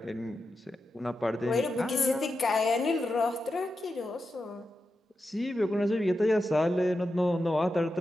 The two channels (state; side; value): normal; both; correlation 0.89